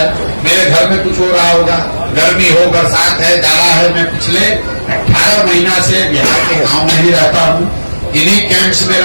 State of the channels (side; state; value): both; inverted; correlation -1.00